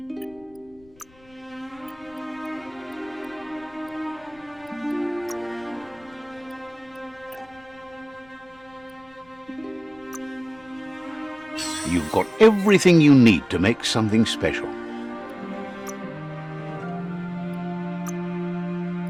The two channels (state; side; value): noise; left; rumble, 27 dB below the sound